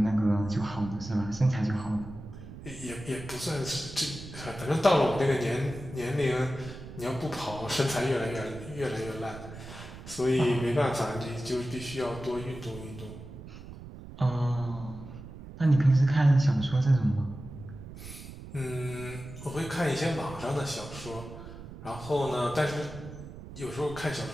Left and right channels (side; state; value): right; noise; rumble, 13 dB below the sound